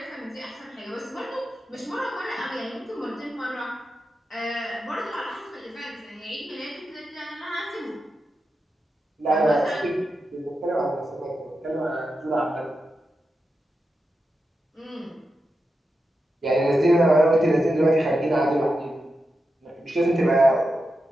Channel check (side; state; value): both; normal; correlation 0.89